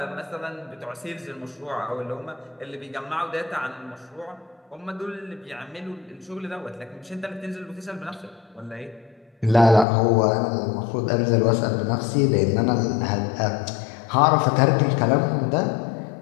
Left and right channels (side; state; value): right; drops out; at 9.9 s